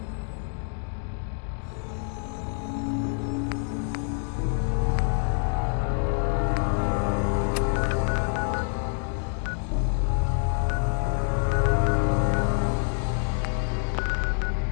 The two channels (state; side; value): silent; right; 60 dB below the other